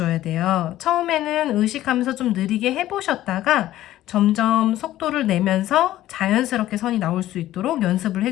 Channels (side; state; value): right; quieter; 14.2 dB